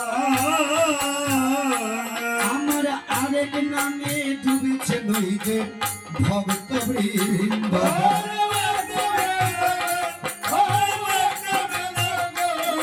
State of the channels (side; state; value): both; identical; correlation 1.00